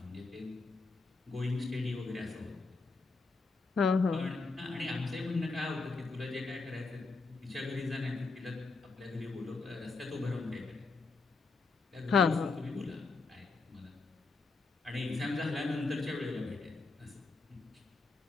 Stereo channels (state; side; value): quieter; right; 4.0 dB